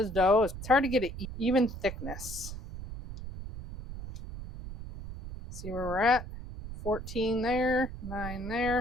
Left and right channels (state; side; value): noise; right; rumble, 10 dB below the sound